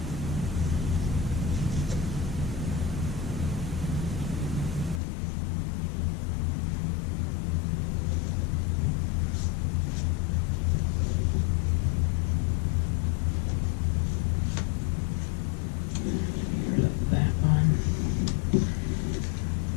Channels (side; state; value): right; drops out; at 5.0 s